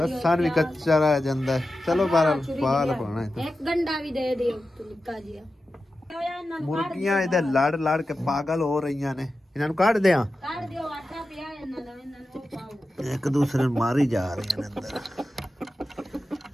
ਲਸਣ ਵੀ ਕੱਚਾ ਰਹਿ ਜਾਂਦਾ ਹੈ। ਚਲੋ ਬਾਹਰ ਪਾਲ ਪਾਣਾ ਇੱਕ ਗੰਡਾ ਵੀ ਦੇ ਦਿਓ ਨਿੱਕਾ ਜਿਹਾ ਮੁਰਗੀਆਂ ਇਹਦੇ ਲੜ ਕੇ ਪਾਗਲ ਹੋ ਰਹੀਆਂ ਨੇ ਇਹਨਾਂ ਨੂੰ ਕੱਢ ਦਿਆਂ ਕੱਢ ਦਿਓ ਆਟਾ ਪਿਆ ਇਹਨਾਂ ਦਾ ਇਹਨਾਂ ਨੂੰ ਪਾਓ ਇੱਕ ਦੂਸਰੇ ਨੂੰ ਮਾਰੀ ਜਾ ਰਹੀਆਂ ਨੇ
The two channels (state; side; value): normal; both; correlation 0.92